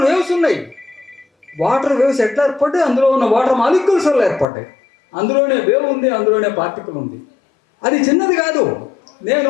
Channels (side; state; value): right; drops out; at 4.5 s